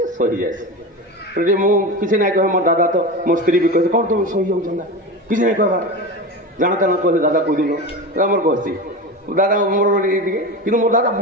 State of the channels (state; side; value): normal; both; correlation 0.25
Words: सही जाए मुझे ना कहे मोर दादा तो मो स्त्री भी कहे कौन तुम सही जाऊँ किसी नहीं कहवा जाना कहले दादा कहीदेल मोर कहसी दादा मोर कि मोर दादा